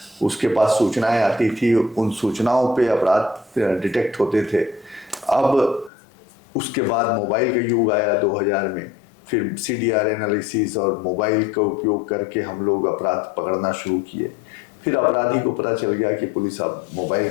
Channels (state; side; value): drops out; right; at 5.9 s